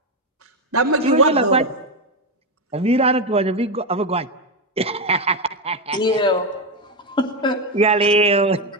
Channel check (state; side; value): normal; both; correlation 0.09